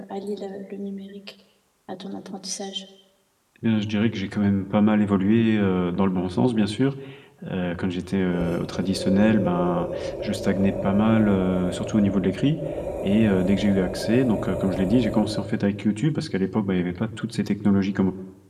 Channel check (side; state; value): both; identical; correlation 1.00